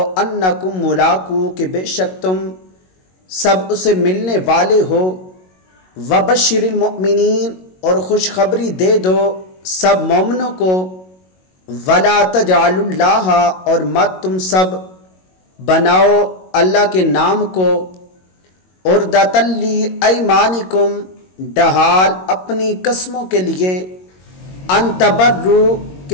انکم ملاقو کہ بے شک تم سب اسے ملنے والے ہو، وبشر المؤمنین اور خوشخبری دے دو سب مومنوں کو، ولا تجعلوا اللہ اور مت تم سب بناؤ اللہ کے نام کو، عرضۃ لایمانکم ڈھال اپنی قسموں کے لیے، ان تبروا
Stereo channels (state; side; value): late; right; 22 ms